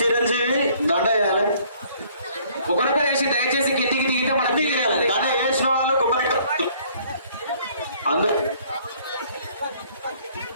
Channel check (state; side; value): inverted; both; correlation -0.59